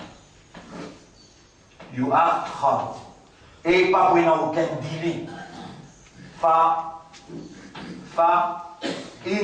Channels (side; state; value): both; identical; correlation 1.00